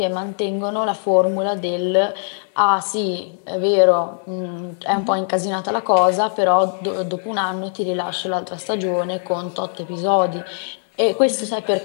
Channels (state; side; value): silent; right; 65 dB below the other